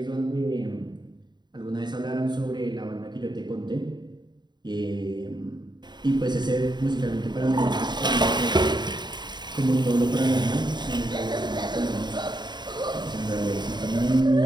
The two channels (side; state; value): left; late; 0.21 ms